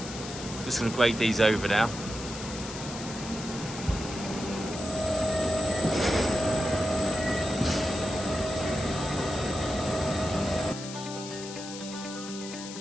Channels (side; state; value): left; noise; hiss, 11 dB below the sound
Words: Just going to grade these over now.